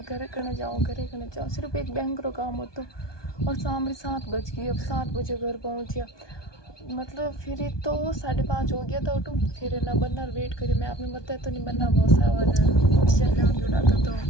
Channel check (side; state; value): right; late; 1.2 ms